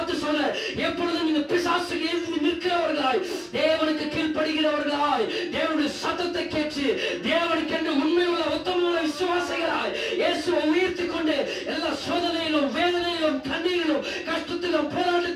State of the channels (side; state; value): both; identical; correlation 1.00